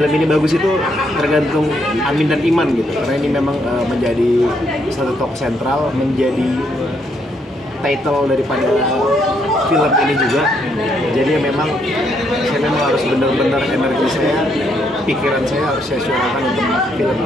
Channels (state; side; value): normal; both; correlation 0.74